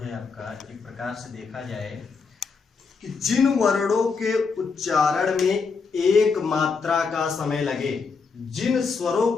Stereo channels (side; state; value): right; quieter; 5.0 dB